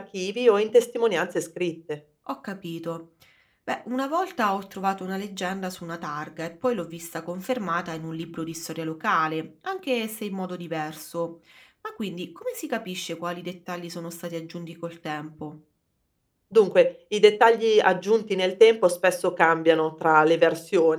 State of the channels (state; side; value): identical; both; correlation 1.00